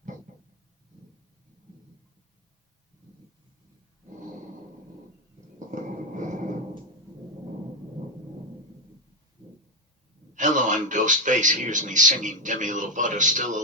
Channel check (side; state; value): both; normal; correlation 0.08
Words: Hello, I'm Ghostface. Here's me singing Demi Lovato Still